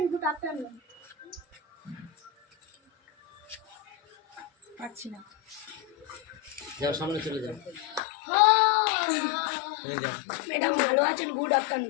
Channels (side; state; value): right; drops out; at 8.0 s